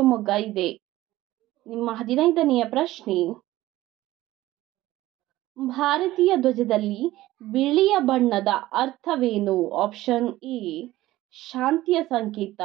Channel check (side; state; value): left; quieter; 16.3 dB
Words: ಇದೆ. ನಿಮ್ಮ 15ನೆಯ ಪ್ರಶ್ನೆ. ಭಾರತೀಯ ಧ್ವಜದಲ್ಲಿ ಬಿಳಿಯ ಬಣ್ಣದ ಅರ್ಥವೇನು? ಆಪ್ಷನ್ ಎ ಶಾಂತಿಯ ಸಂಕೇತ,